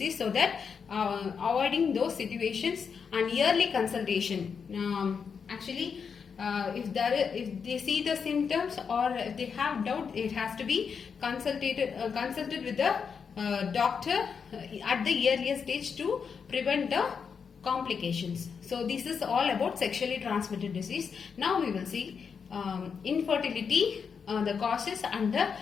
so that avoiding those situations, and yearly consultation. Actually, if they see the symptoms or if they have doubt, it has to be consulted with the doctor at the earlier stage to prevent the complications. So this is all about sexually transmitted disease. Now we will see infertility, the causes and the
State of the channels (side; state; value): right; quieter; 6.2 dB